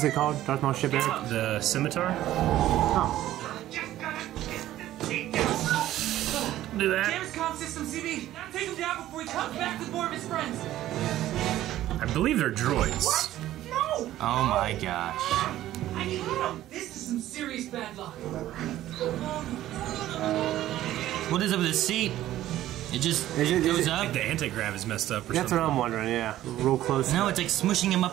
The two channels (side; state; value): left; quieter; 13.8 dB